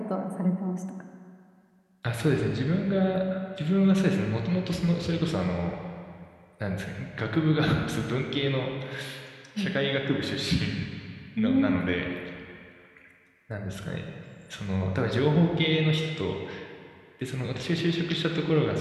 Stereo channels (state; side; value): identical; both; correlation 1.00